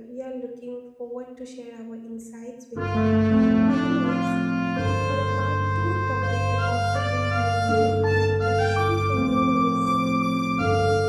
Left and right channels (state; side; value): identical; both; correlation 1.00